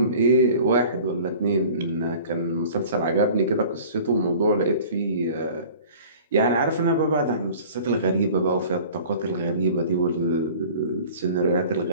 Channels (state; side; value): inverted; both; correlation -0.45